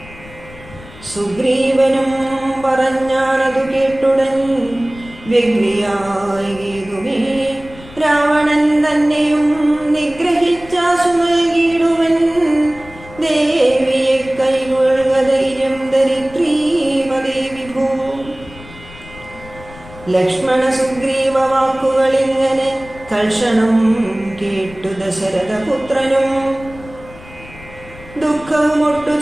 സുഗ്രീവനും പറഞ്ഞാനതു കേട്ടുടൻ വ്യഗ്രിയായി കേതുമേ രാവണൻ തന്നെയും നിഗ്രഹിച്ചാശു നൽകിയിടുവൻ. ദേവിയെ കൈകൊള്ളുക ധൈര്യം ദരിദ്രീമതേ വിഭോ. ലക്ഷ്മണ സുഗ്രീവ വാക്കുകളിങ്ങനെ തൽക്ഷണം കേട്ടു ദശരഥപുത്രനും ദുഃഖവുമൊട്ടു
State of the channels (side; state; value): left; noise; rumble, 19 dB below the sound